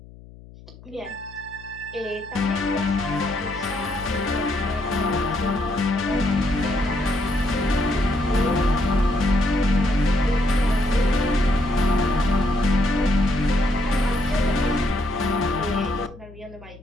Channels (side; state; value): left; noise; hum, 20 dB below the sound